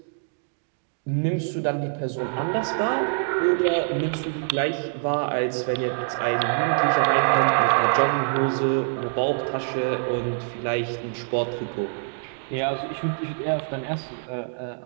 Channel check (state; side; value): silent; left; digital silence